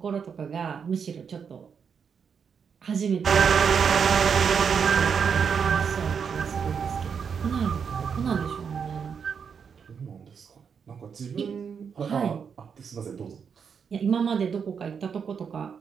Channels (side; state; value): left; quieter; 6.6 dB